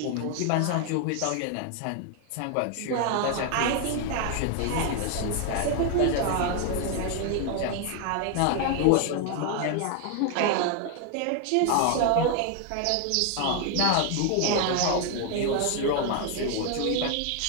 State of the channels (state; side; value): different; both; correlation 0.00